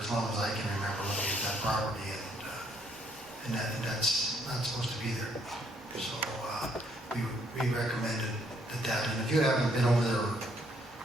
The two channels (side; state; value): both; normal; correlation 0.69